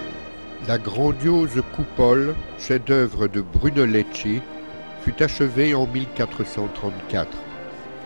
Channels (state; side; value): inverted; both; correlation -1.00